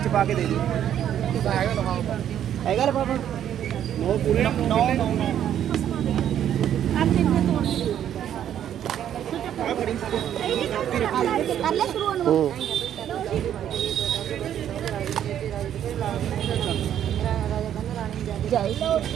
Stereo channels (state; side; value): quieter; left; 10.3 dB